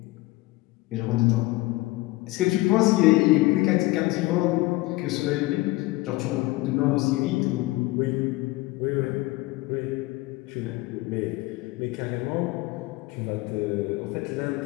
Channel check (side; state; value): right; quieter; 20.4 dB